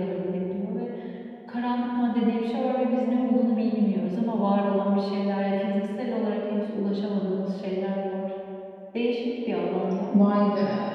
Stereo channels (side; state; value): both; identical; correlation 1.00